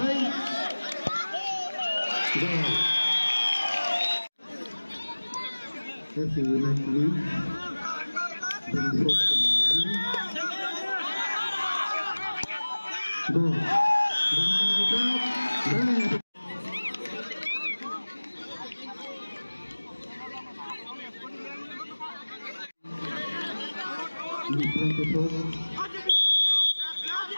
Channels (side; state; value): both; inverted; correlation -1.00